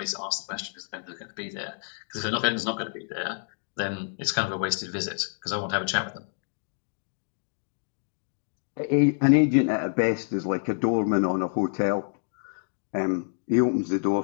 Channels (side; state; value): right; silent; digital silence